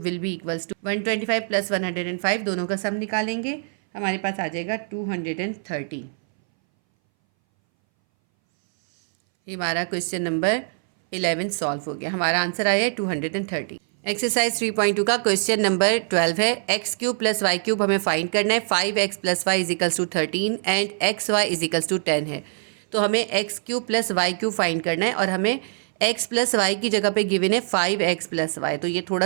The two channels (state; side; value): silent; left; 61 dB below the other